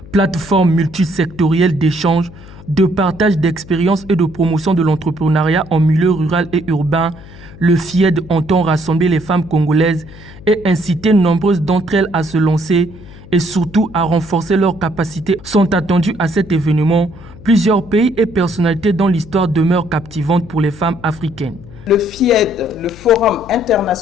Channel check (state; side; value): noise; left; hum, 18 dB below the sound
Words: Plateforme multisectorielle d'échange, de partage d'expériences et de promotion de l'entrepreneuriat en milieu rural et urbain, le FIED entend rassembler les femmes congolaises et inciter nombreuses d'entre elles à se lancer et surtout à renforcer leurs capacités. Sont attendus à cet événement plusieurs pays et personnalités dont l'histoire demeure captivante pour les femmes africaines. Le FIED, le Forum